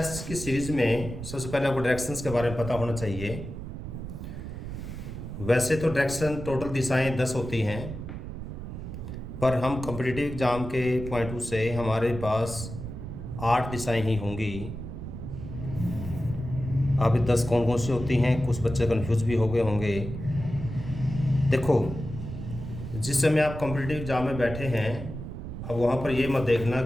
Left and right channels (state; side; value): noise; right; rumble, 8 dB below the sound